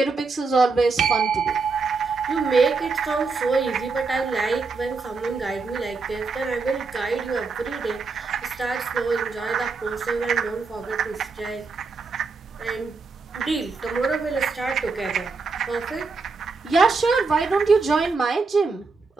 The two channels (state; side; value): quieter; left; 4.3 dB